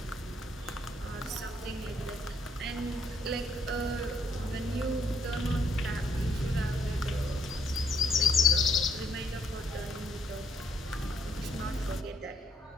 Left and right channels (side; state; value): both; normal; correlation 0.68